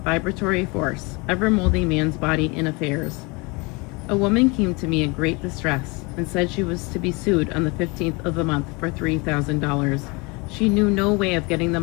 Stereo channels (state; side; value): quieter; right; 27.7 dB